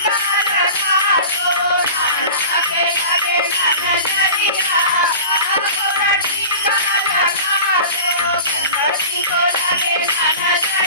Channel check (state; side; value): inverted; both; correlation -0.37